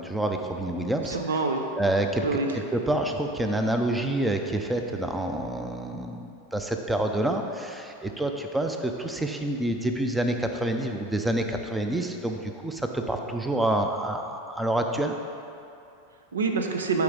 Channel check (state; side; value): normal; both; correlation 0.50